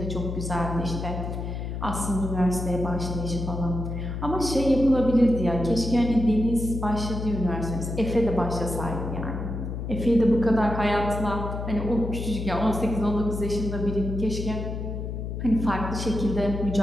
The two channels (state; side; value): noise; left; hum, 5 dB below the sound